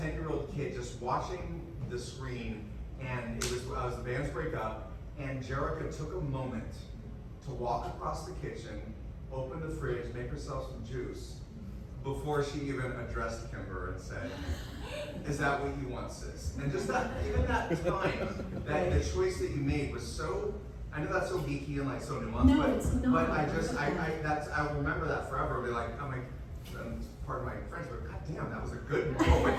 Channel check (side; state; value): both; identical; correlation 1.00